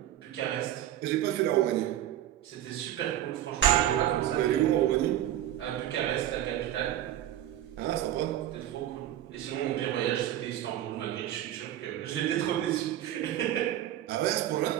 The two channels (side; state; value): left; quieter; 12.2 dB